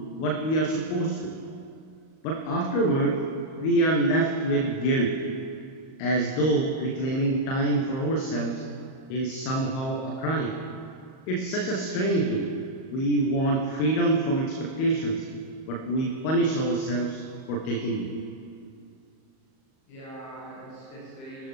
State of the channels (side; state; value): right; late; 38 ms